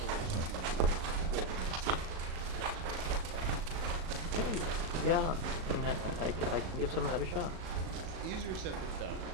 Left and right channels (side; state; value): left; late; 37 ms